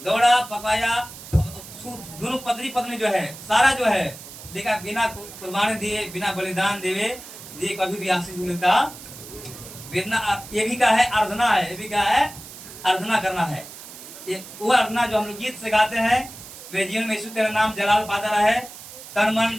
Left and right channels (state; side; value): noise; right; hiss, 15 dB below the sound